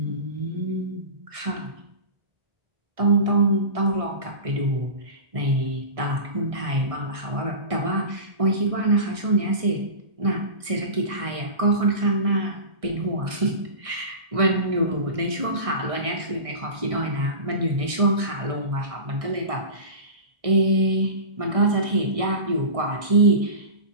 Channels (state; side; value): late; left; 1.6 ms